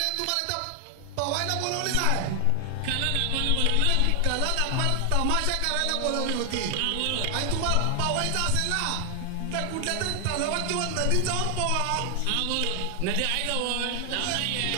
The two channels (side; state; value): both; different; correlation 0.00